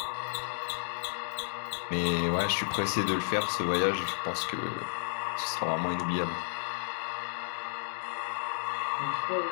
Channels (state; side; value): silent; right; digital silence